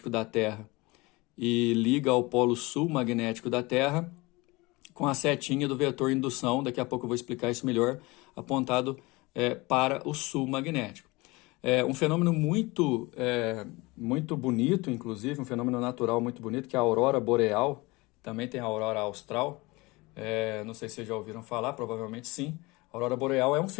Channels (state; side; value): quieter; right; 23.4 dB